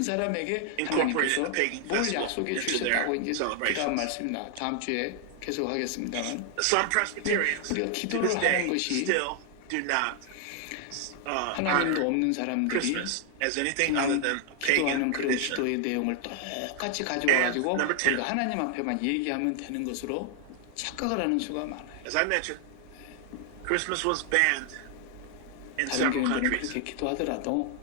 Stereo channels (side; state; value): both; different; correlation 0.00